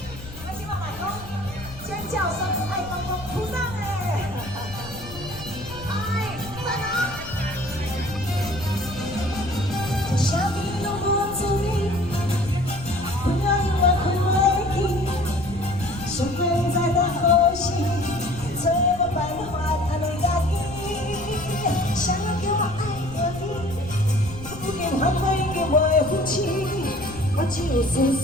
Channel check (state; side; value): noise; left; rumble, 15 dB below the sound